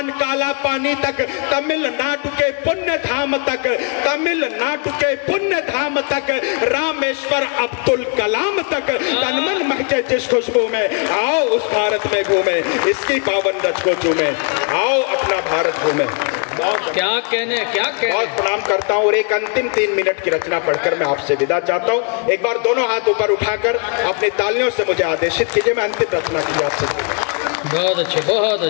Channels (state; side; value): quieter; right; 39.6 dB